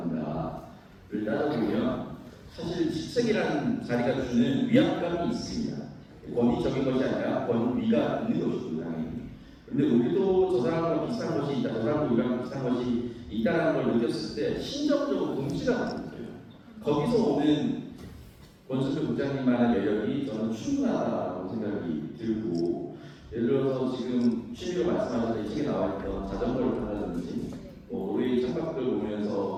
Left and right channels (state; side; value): identical; both; correlation 1.00